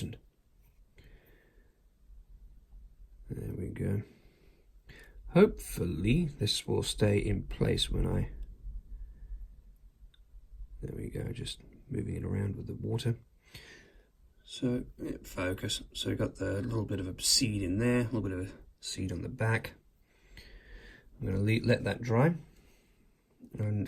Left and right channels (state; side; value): identical; both; correlation 1.00